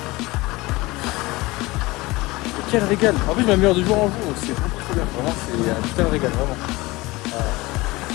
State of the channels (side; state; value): right; quieter; 21.5 dB